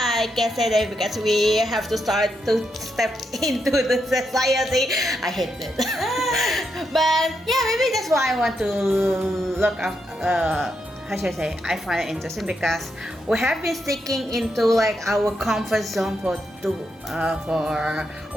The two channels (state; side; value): normal; both; correlation 0.82